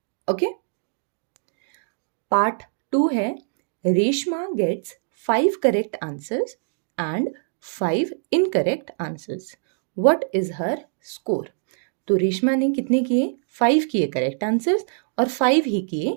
ओके। पार्ट 2 है, Reshma gets 5 correct answers and 5 incorrect answers, what is her score. तो रेशमा ने कितने किए, 5 किए करेक्ट आंसर्स और 5 ही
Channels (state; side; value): silent; left; digital silence